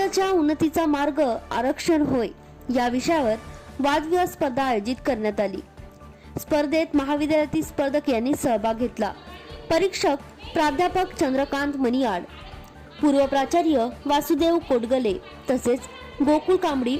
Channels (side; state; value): both; identical; correlation 1.00